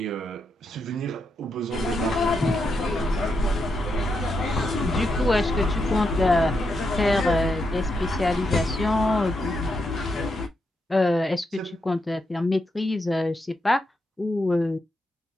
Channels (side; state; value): both; normal; correlation 0.83